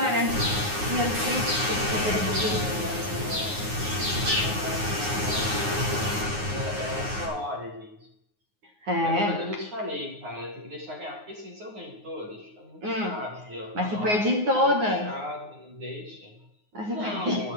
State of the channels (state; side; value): late; left; 9.6 ms